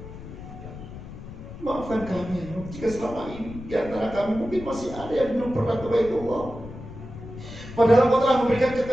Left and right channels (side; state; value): left; noise; rumble, 13 dB below the sound